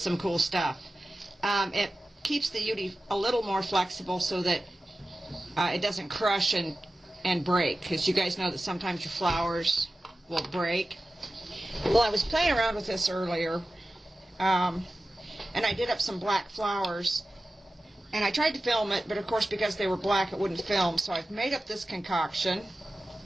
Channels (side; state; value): both; normal; correlation 0.95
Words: some cool stuff. It keeps the UD a little more flexible so that it doesn't crush and break, because you guys know that sometimes your flowers will break. Well, I was playing around with this earlier, and I did up some black flowers, and I tried to film it, but of course because they were black it wouldn't film, so I've made up this concoction,